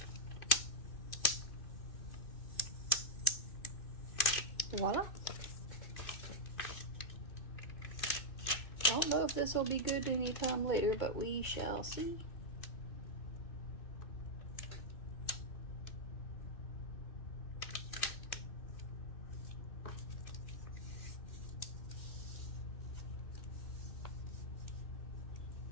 Voila. I don't know if this will be good anytime later, but we shall see.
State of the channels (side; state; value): right; late; 2.6 ms